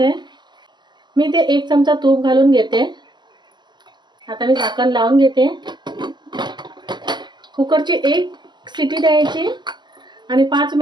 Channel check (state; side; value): late; left; 0.21 ms